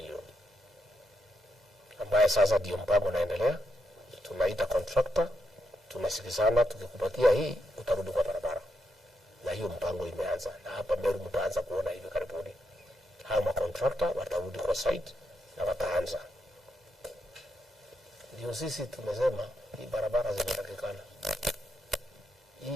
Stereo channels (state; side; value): normal; both; correlation 0.82